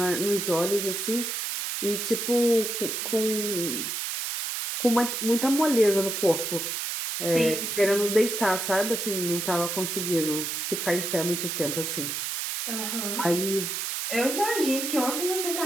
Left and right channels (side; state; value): right; noise; hiss, 3 dB below the sound